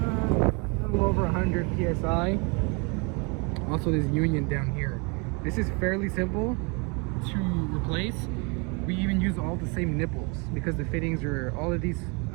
a little over 100 psi. Also this union down here. This is fairly simple to replace. We even use all the same nipples because the fittings are, all of these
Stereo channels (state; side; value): quieter; left; 32.1 dB